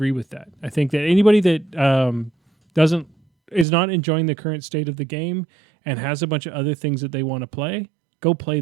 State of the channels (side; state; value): left; drops out; at 3.7 s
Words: with that. I think that anybody that is not enjoying the current state of the game and has a bunch of other things that they want to play, go play